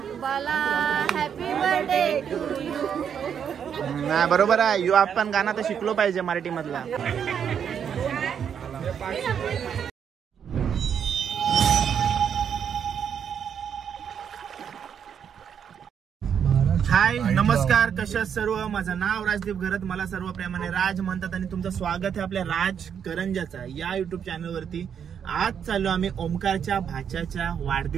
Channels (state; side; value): quieter; left; 8.0 dB